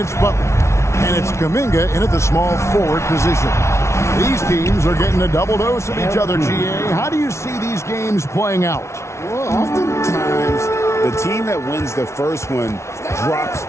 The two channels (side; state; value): right; late; 0.13 ms